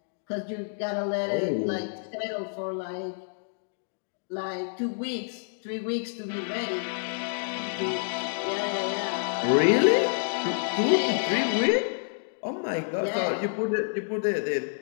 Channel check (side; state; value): right; silent; digital silence